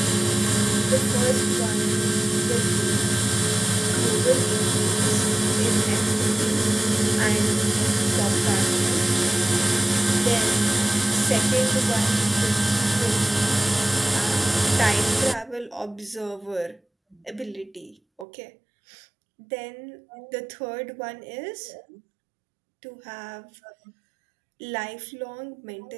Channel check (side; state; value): left; drops out; at 18.2 s